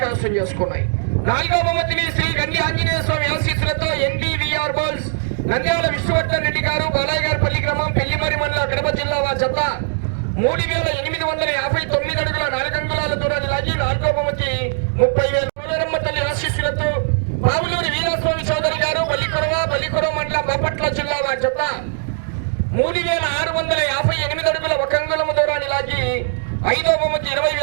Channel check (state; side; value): silent; left; digital silence